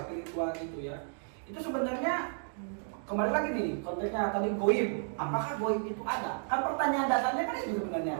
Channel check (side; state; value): left; silent; 56 dB below the other